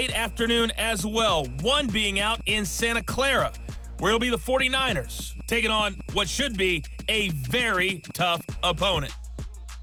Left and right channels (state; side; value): identical; both; correlation 1.00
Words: afternoon as well, one being out in Santa Clara, where it'll be the 49ers taking on what should be a very tough opponent.